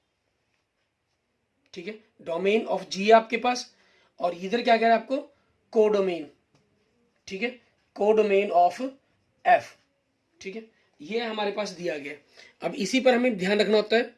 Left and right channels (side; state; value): both; identical; correlation 1.00